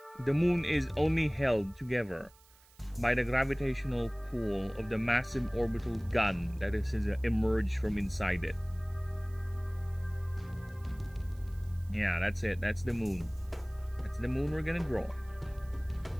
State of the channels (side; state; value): right; noise; hiss, 27 dB below the sound